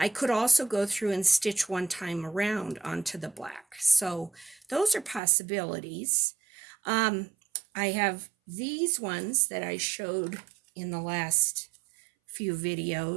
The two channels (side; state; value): left; drops out; at 5.2 s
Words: could also go through and stitch one time around onto the black. So those are possibilities. I have these ones that I showed in the last few